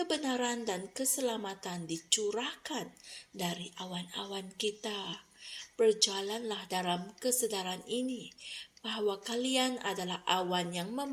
dan keselamatan dicurahkan dari awan-awan kita. Berjalanlah dalam kesedaran ini bahwa kalian adalah awan yang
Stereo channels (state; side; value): identical; both; correlation 1.00